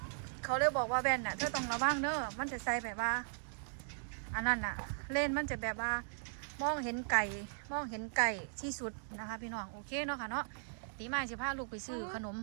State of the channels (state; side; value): silent; left; digital silence